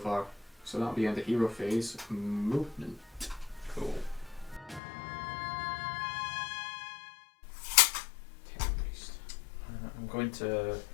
So that'll be end of hero phase. Movement. Cool. I'm going to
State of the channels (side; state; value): right; drops out; at 4.8 s